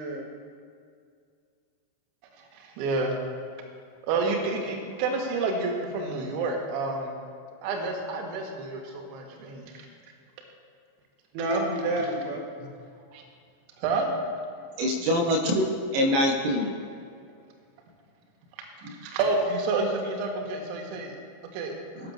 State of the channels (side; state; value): left; late; 29 ms